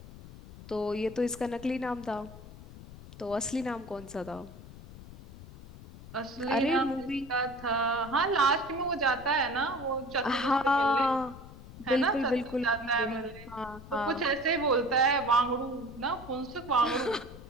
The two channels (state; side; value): noise; left; rumble, 16 dB below the sound